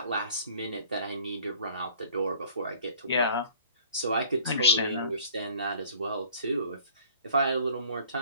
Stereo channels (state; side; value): inverted; both; correlation -0.50